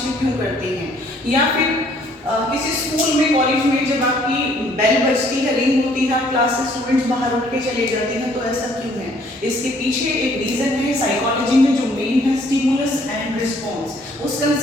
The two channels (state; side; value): normal; both; correlation 0.62